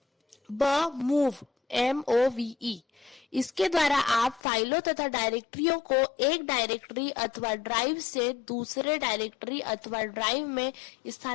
मूव MOVE इसके द्वारा आप फाइलों तथा डायरेक्टरियों को एक डायरेक्टरी अथवा ड्राइव से दूसरे डायरेक्टरी अथवा ड्राइव में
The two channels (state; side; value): drops out; right; at 4.4 s